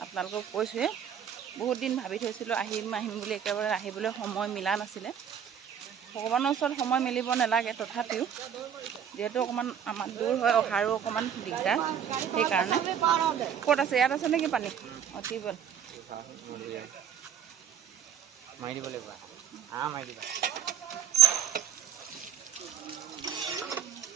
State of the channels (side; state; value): left; quieter; 8.7 dB